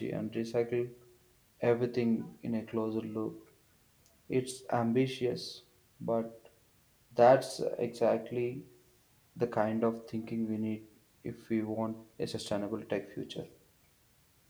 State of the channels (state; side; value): identical; both; correlation 1.00